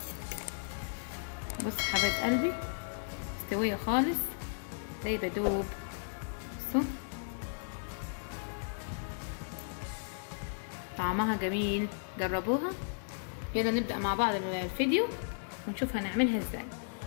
بص حبايب قلبي، مستويه خالص زي بدوب. بصوا طعمها جميل، جربوها. يلا نبدأ مع بعض الفيديو ونشوف هنعملها ازاي.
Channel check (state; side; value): silent; right; 55 dB below the other